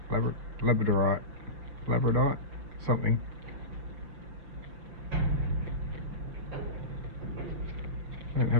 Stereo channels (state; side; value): late; left; 5.9 ms